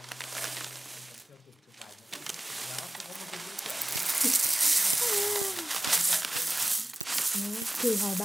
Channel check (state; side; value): normal; both; correlation 0.97